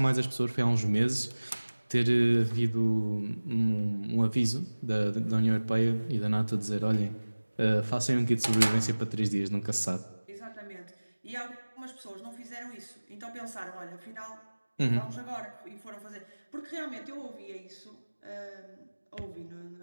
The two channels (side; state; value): both; inverted; correlation -1.00